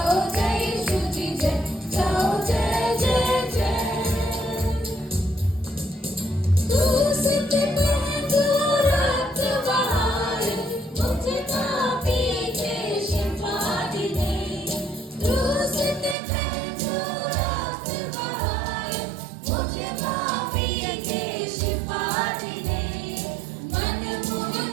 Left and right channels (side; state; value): left; drops out; at 16.2 s